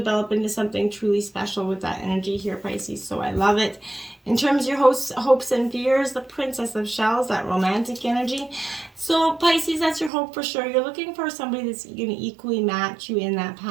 into something truly special with that energy here, Pisces. So I love it. In terms of your hopes and fears, the Princess of Shells, that romantic energy. So Pisces, that's your hope for sure. You're looking for somebody that's going to equally match you in that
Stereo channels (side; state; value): left; drops out; at 10.1 s